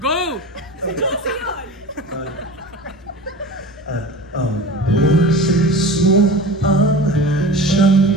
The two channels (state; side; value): normal; both; correlation 0.35